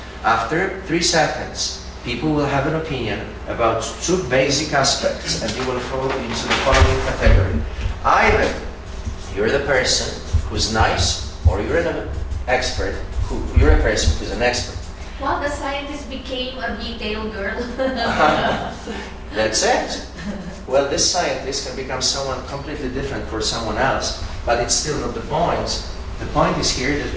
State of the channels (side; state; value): both; identical; correlation 1.00